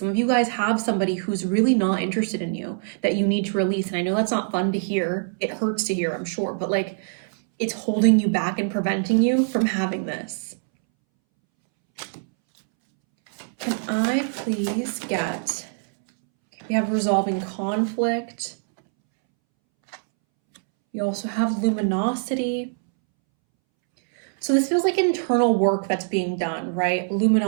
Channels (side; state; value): left; silent; 63 dB below the other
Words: of you guys have somebody who's really not interested in you that you need to release. And I know that's not fun to hear. It hurts to hear, I'm sure, but like it's holding you back and preventing you from having this. Can I please get, we have resolving conflict. We also have luminosity. So this feels like internal work that's being done, right?